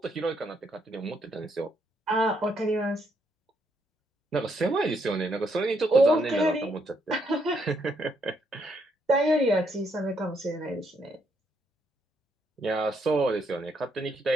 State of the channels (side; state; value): both; normal; correlation 0.74